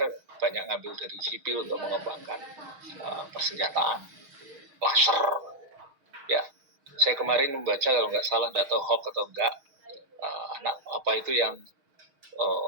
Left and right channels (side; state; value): left; late; 6.4 ms